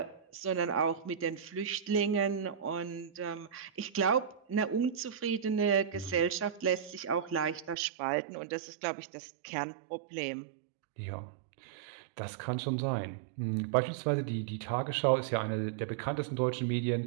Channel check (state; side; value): drops out; left; at 7.8 s